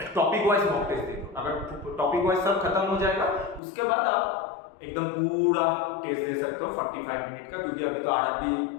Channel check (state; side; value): drops out; right; at 3.6 s